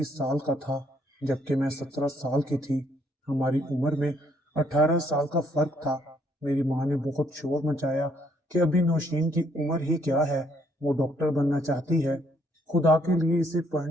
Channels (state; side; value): normal; both; correlation 0.68